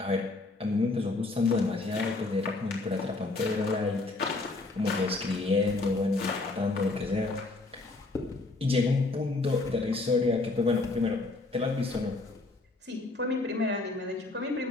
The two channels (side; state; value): right; quieter; 3.3 dB